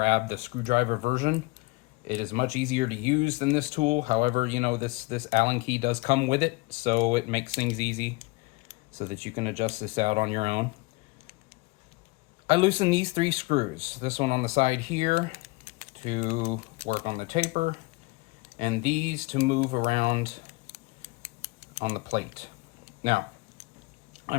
the screwdriver version, it is much easier to use than this tool. However, you know, this Allen key does come with it, so it makes things easy so that you can adjust this out on your own. I loosen these 3 screws. This one on the side here to work on the taper, and these to move around on the plate. Now,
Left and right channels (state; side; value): quieter; right; 24.3 dB